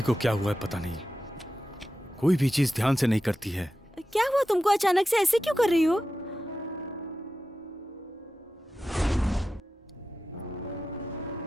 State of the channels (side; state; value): both; normal; correlation 0.92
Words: को क्या हुआ है पता नहीं, कोई भी चीज ध्यान से नहीं करती है। क्या हुआ तुमको? अचानक से ऐसे क्यों कर रही हो?